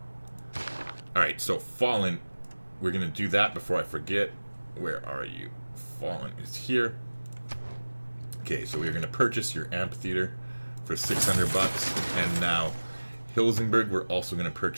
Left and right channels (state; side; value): inverted; both; correlation -1.00